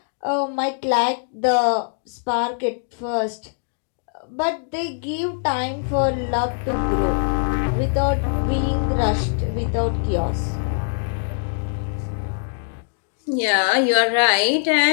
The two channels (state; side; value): silent; right; digital silence